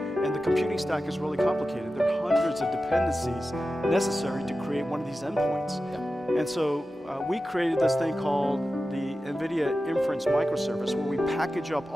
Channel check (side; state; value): both; normal; correlation 0.93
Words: the computing stack is really complicated. There are hundreds of dependencies necessary to create one of these endpoints. Yeah. And so we created this thing called the Nvidia Inference Microservice, where we package up